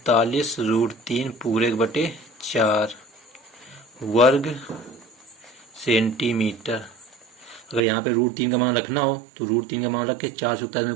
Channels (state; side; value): drops out; left; at 7.8 s